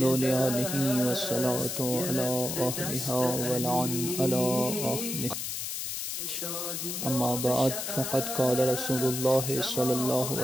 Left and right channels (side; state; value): left; noise; hiss, 4 dB below the sound